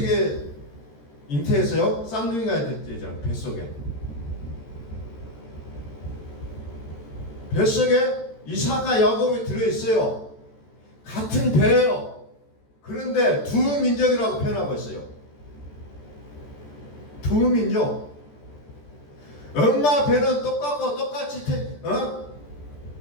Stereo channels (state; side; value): late; right; 14 ms